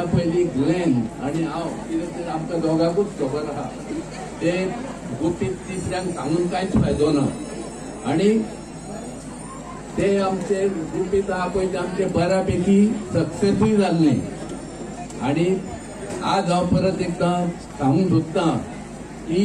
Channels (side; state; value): both; identical; correlation 1.00